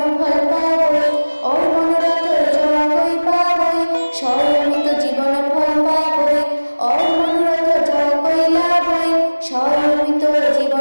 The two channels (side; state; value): both; inverted; correlation -1.00